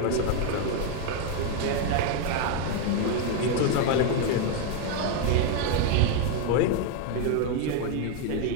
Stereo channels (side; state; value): both; different; correlation 0.01